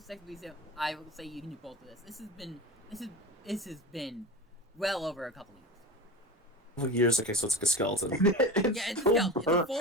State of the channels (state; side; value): normal; both; correlation 0.29